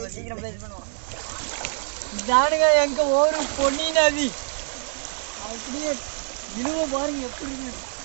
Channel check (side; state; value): left; silent; digital silence